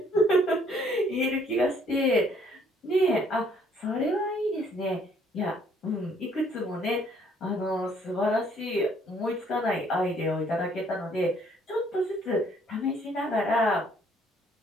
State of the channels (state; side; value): normal; both; correlation 0.64